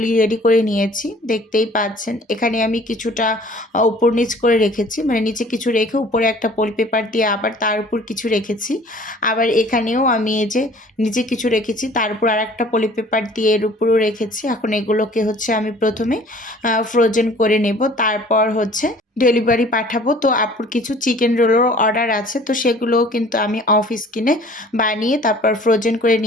রেডি করে নিয়েছি, দেখতেই পাচ্ছেন। এখানে আমি কিছুটা উপর নিচ করে রেখেছি, মানে নিচে কিছু রেখে উপরে একটা পলি পেপার দিয়ে আবার তার উপর কিছু রেখেছি। আবার এখানেও আমি এই যে নিচে কিছু রেখেছি, তার উপর আর একটা পলি পেপার দিয়ে এর উপরেও রেখেছি। এখন এগুলোকে হচ্ছে আমি প্রথমে ফ্রোজেন করে নেব, তারপর হচ্ছে ডেলিভারি পাঠাবো। তো আপুর কিছু চিকেন রোলেরও অর্ডার আছে, তো সেগুলোও কিন্তু আমি অফ স্ক্রিনে বানিয়ে তারপর ফ্রোজেন করে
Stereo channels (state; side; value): normal; both; correlation 0.51